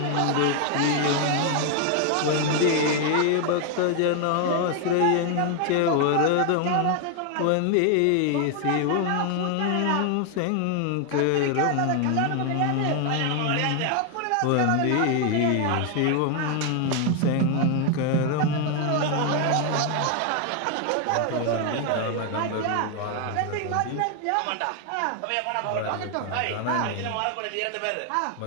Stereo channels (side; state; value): both; different; correlation 0.00